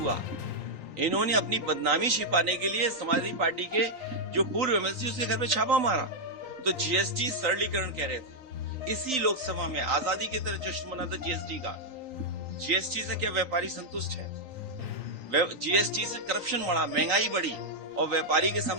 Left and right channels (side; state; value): left; late; 3.9 ms